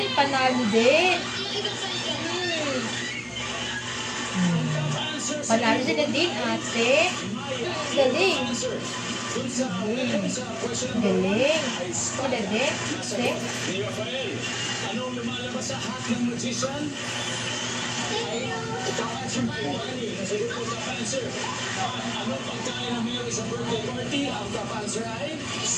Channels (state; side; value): identical; both; correlation 1.00